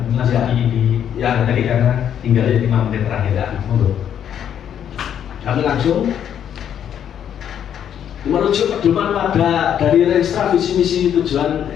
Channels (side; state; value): right; quieter; 9.3 dB